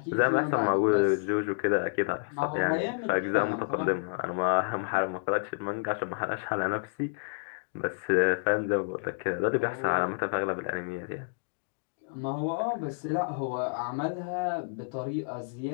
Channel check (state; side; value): silent; right; digital silence